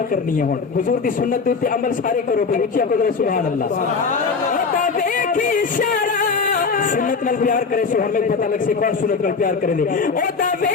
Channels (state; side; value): quieter; right; 5.0 dB